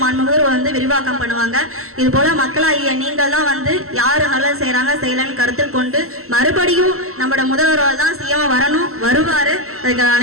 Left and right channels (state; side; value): late; left; 0.63 ms